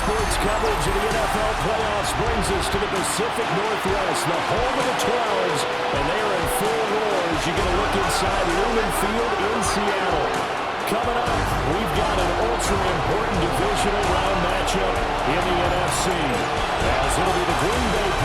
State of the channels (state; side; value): identical; both; correlation 1.00